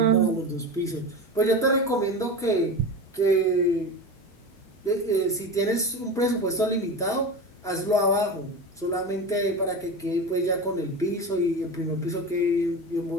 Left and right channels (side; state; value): both; normal; correlation 0.26